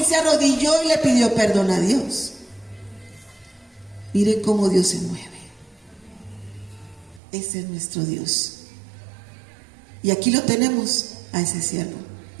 se arrodilló y le pidió perdón a Dios. Mire cómo Dios se mueve. Ese es nuestro Dios. Y aquí lo tenemos a ese siervo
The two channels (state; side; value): drops out; left; at 7.2 s